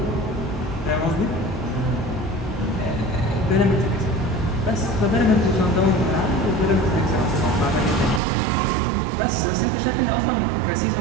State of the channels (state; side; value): drops out; left; at 8.2 s